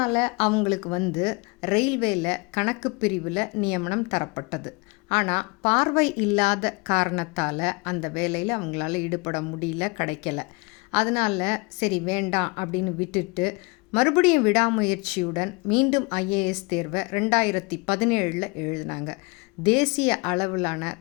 அவங்களுக்கு ரயில்வேயில் கணக்கு பிரிவில் நியமனம் தரப்பட்டது. ஆனால் பார்வை இல்லாத காரணத்தால் அந்த வேலையில் அவங்களால ஈடுபட முடியல, கிடைக்கல. அதனால் சரி வேண்டாம் அப்படின்னு விட்டுட்டு மறுபடியும் விடாமுயற்சியுடன் மீண்டும் ஐஏஎஸ் தேர்வை 2017 எழுதினாங்க. தேசிய அளவிலான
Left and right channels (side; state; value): right; quieter; 28.3 dB